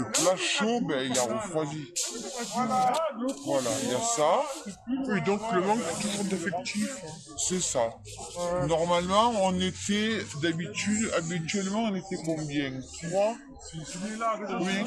plat chaud, il a refroidi. Voilà, il y a ça. Oui, donc le manque toujours d'effectifs. C'est ça. Normalement, on était habituellement, on était combien? 3? Oui,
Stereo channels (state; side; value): identical; both; correlation 1.00